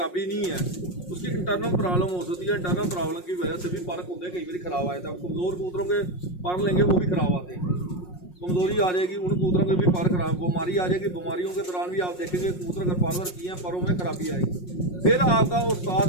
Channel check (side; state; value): right; late; 5.5 ms